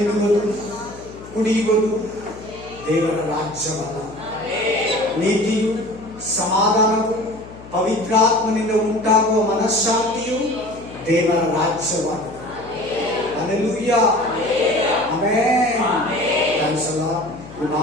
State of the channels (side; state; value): left; noise; hum, 18 dB below the sound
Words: ಕುಡಿಯುವುದು ದೇವರ ರಾಜ್ಯವಲ್ಲ. ನೀತಿಯು, ಸಮಾಧಾನವು, ಪವಿತ್ರಾತ್ಮನಿಂದ ಉಂಟಾಗುವ ಮನಃಶಾಂತಿಯು ದೇವರ ರಾಜ್ಯವಾಗಿದೆ. Hallelujah, amen. Thanks a lord. ಈ